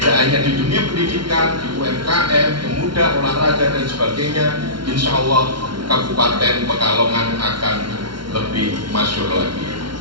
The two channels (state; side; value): late; left; 0.73 ms